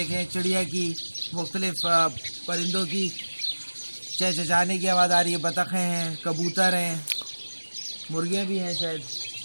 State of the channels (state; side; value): inverted; both; correlation -1.00